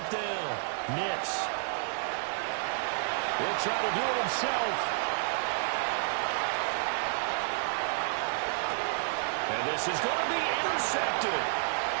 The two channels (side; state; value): left; silent; 57 dB below the other